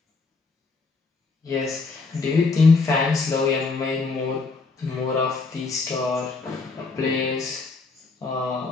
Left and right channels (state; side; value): quieter; right; 4.1 dB